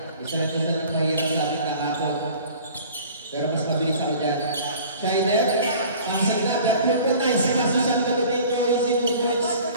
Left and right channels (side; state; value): both; inverted; correlation -0.46